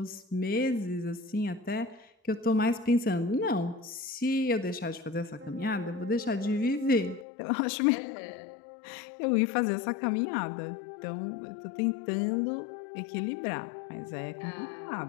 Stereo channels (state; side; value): drops out; right; at 7.2 s